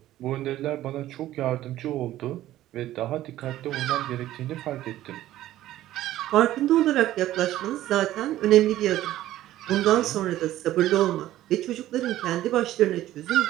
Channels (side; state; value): left; quieter; 14.2 dB